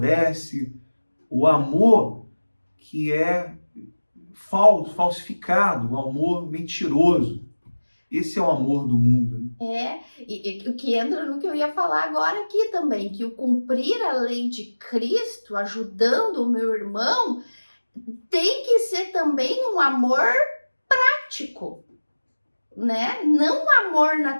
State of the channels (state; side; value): inverted; both; correlation -1.00